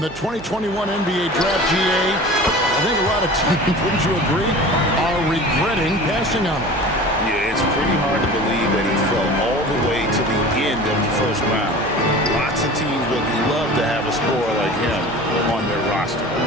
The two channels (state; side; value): noise; right; hum, 16 dB below the sound